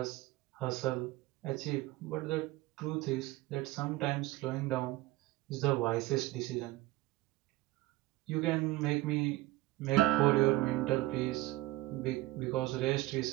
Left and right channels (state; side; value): quieter; left; 18.7 dB